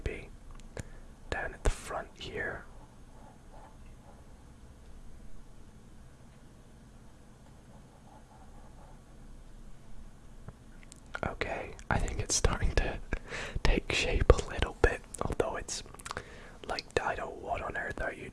down at the front here. Okay, I think it's starting to take shape a little bit, although it's like, Dido, what on earth are you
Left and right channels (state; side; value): identical; both; correlation 1.00